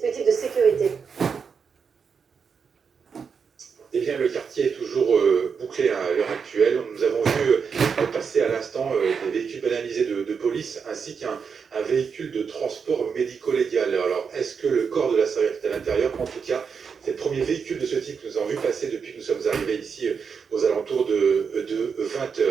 de sécurité? Eh bien, le quartier est toujours bouclé à l'heure actuelle. Nous avons vu passer à l'instant des véhicules banalisés de police ainsi qu'un véhicule de transport médico-légal. Alors, est-ce que le corps de l'assaillant est à l'intérieur? En tout cas, c'est le premier véhicule de ce type que nous avons vu passer depuis que nous sommes arrivés ici aux alentours de 20h.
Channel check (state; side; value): quieter; left; 6.1 dB